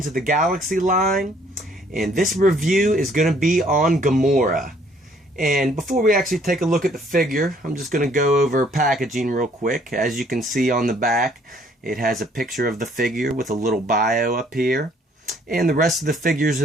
of the Galaxy line, and this review is going to be on Gamora. And before we actually take a look at the figure, I'm just going to go over packaging real quick. As you can see on the back, it has a picture of the figure with a little bio up here. And the rest of the figures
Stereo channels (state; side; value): normal; both; correlation 0.62